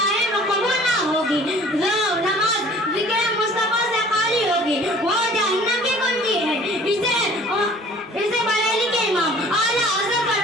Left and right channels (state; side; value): normal; both; correlation 0.50